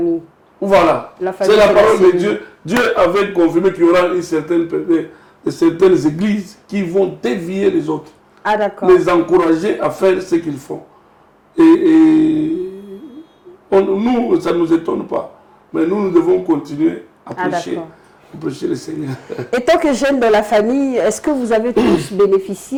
Voilà. C'est la parole de Dieu. Dieu avait confirmé qu'il y aura certaines églises qui vont dévier les autres. Ah, d'accord. Les encourager à faire ce qu'ils font. Et nous, ça ne nous étonne pas. Mais nous devons continuer à prêcher le Seigneur. Et tant que jeune dans la famille, est-ce que vous avez tous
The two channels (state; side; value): identical; both; correlation 1.00